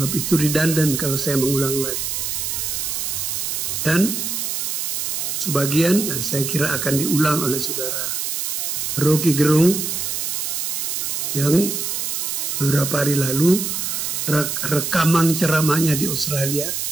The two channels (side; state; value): right; noise; hiss, 2 dB below the sound